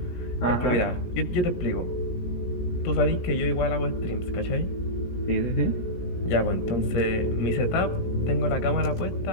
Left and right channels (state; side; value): late; right; 17 ms